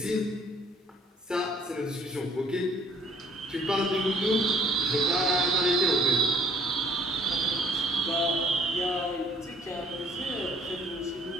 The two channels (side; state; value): both; normal; correlation 0.59